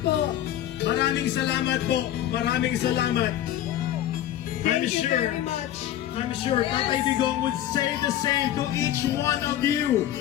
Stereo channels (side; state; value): right; quieter; 12.1 dB